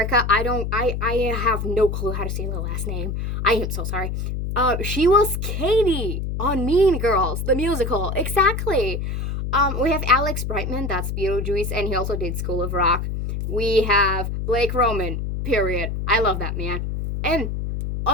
I have no clue how to say the last name. I am so sorry. She was Katie on Mean Girls, the musical. Exactly. We have Alex Brightman, that's Beetlejuice, and he also did School of Rock. We have Blake Roman, period. I love that man. And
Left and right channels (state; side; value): noise; left; hum, 3 dB below the sound